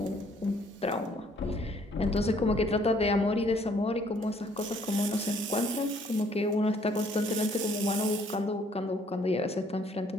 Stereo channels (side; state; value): both; normal; correlation 0.63